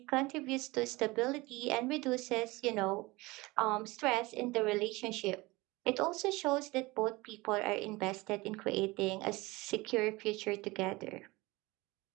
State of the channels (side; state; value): left; quieter; 22.3 dB